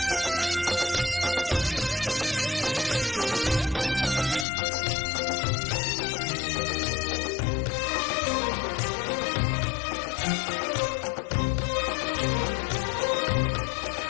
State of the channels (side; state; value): right; drops out; at 4.5 s